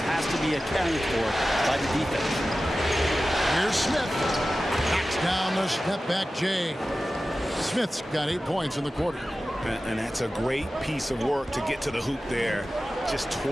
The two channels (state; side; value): normal; both; correlation 0.95